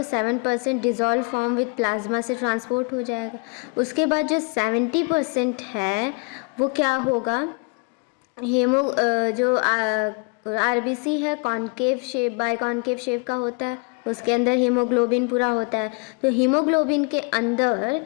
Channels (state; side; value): quieter; right; 32.5 dB